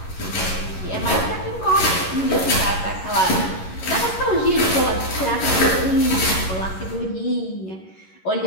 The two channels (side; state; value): right; late; 11 ms